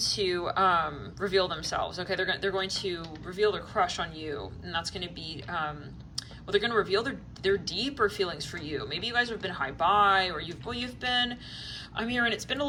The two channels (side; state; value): both; identical; correlation 1.00